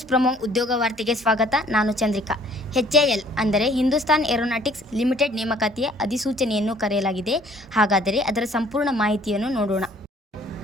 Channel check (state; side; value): normal; both; correlation 0.57